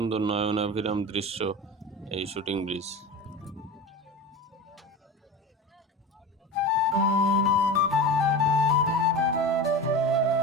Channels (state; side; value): normal; both; correlation 0.29